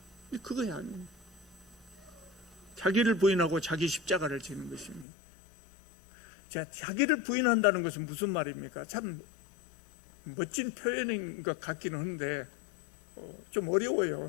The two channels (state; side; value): drops out; right; at 5.1 s